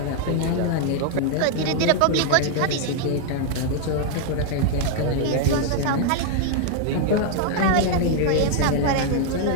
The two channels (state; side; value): different; both; correlation 0.00